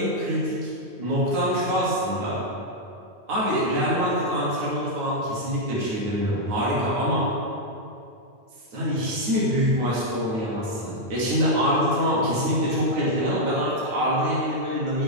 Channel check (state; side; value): late; left; 9.3 ms